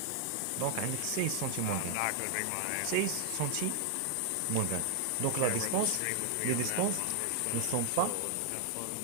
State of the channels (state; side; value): different; both; correlation 0.00